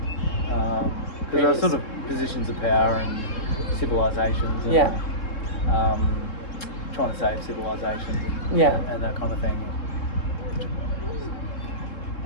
because there are sort of positions of power and civilizations and trying to save civilizations and that kind of thing.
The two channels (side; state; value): right; late; 3.7 ms